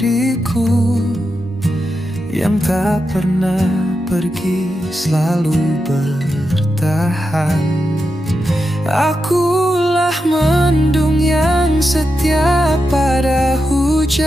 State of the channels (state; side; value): normal; both; correlation 0.88